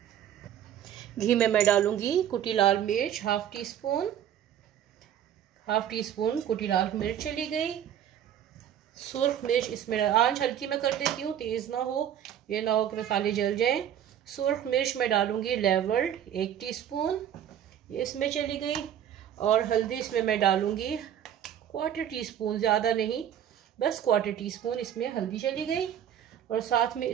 घी में मैं डालूंगी कुटी लाल मिर्च हाफ टी स्पून। कुटी लाल मिर्च चली गई। सुर्ख मिर्च इसमें आंच हल्की में कर देती हूँ, तेज ना हो, ये ना हो कि मसाले जल जाएं। सुर्ख मिर्च में डालूंगी लेवल्ड 1 टीस्पून, ये इसमें चली गई। और हल्दी इसमें मैं डालूंगी 1/4 टीस्पून, ज़्यादा नहीं, बस 1/4 टीस्पून इसमें हल्दी चली गई। और साथ में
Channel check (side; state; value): left; quieter; 10.1 dB